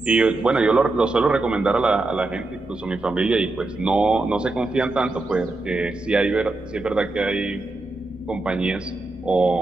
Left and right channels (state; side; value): quieter; left; 3.0 dB